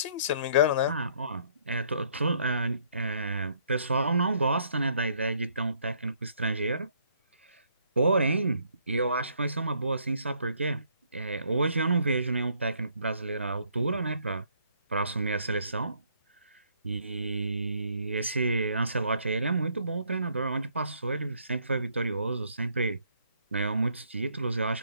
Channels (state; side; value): inverted; both; correlation -0.66